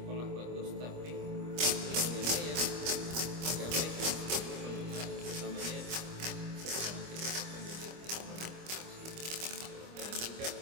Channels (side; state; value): left; late; 25 ms